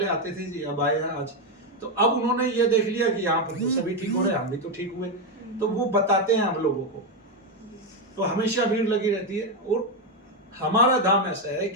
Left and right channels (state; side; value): normal; both; correlation 0.07